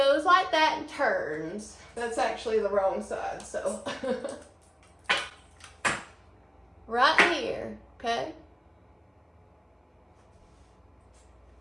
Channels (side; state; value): both; identical; correlation 1.00